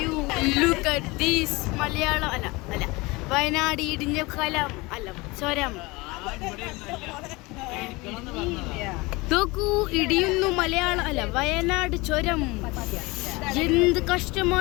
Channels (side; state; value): right; quieter; 23.6 dB